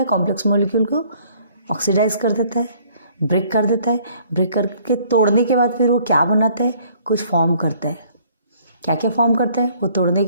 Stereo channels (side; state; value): both; inverted; correlation -0.59